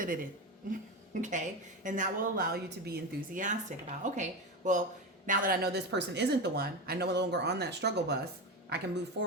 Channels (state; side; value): normal; both; correlation 0.19